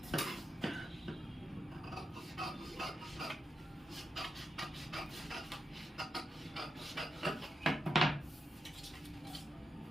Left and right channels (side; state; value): both; normal; correlation 0.87